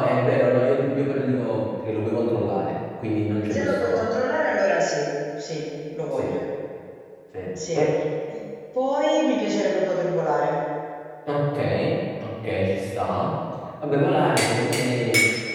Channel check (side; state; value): both; identical; correlation 1.00